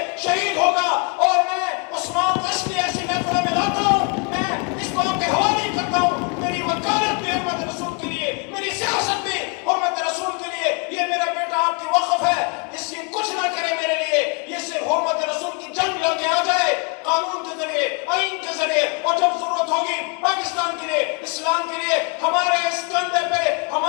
شہید ہوگا۔ اور میں عثمان کو اس لیے ایسی محفلوں میں لاتا ہوں، میں اس بات کے حوالے کرتا ہوں، میری وکالت بھی حرمت رسول کے لیے، میری سیاست بھی حرمت رسول کے لیے۔ یہ میرا بیٹا آپ کی وقف ہے، اس سے کچھ نہ کرے میرے لیے، یہ صرف حرمت رسول کی جنگ لڑ کے آ جائے قانون کے ذریعے، آئین کے ذریعے، اور جب ضرورت ہوگی پاکستان کے لیے، اسلام کے لیے، ہمارے اس کندھے پہ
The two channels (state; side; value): quieter; right; 33.7 dB